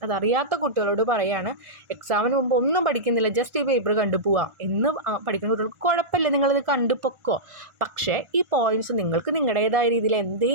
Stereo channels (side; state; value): left; late; 1.4 ms